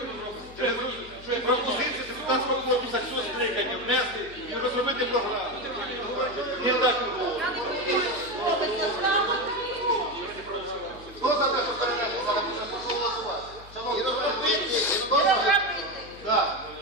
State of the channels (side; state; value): left; noise; hum, 19 dB below the sound